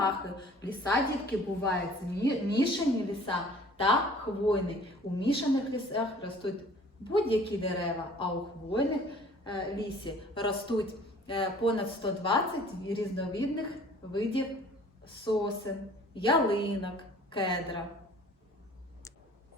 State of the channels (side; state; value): both; normal; correlation 0.51